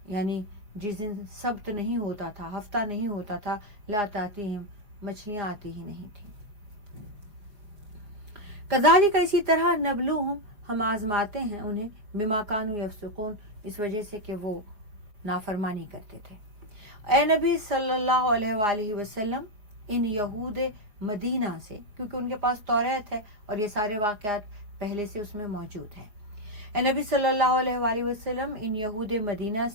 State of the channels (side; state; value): left; late; 4.8 ms